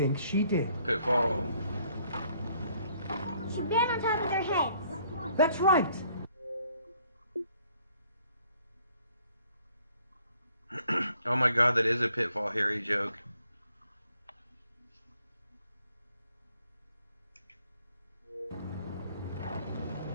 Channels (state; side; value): inverted; both; correlation -0.64